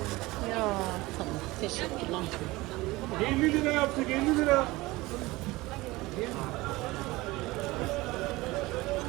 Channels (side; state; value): left; quieter; 20.5 dB